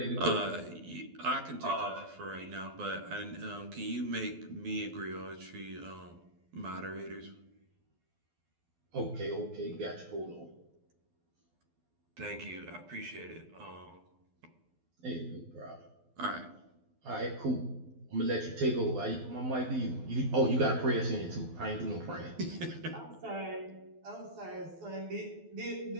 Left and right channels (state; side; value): late; left; 12 ms